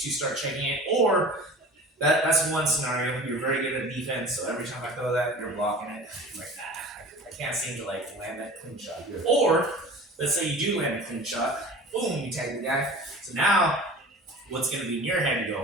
to start checking it, or that's one scenario. You're very good at defense, so every time I throw that, you're blocking it. You're like, nah, I can't seem to like land that clean shot. Yeah. Or let's say you do land a clean shot, boom, you tag the guy. So now, what's gonna be in your head? You go,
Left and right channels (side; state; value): both; normal; correlation 0.40